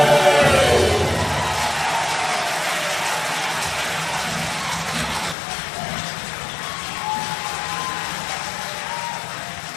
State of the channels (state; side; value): drops out; right; at 5.4 s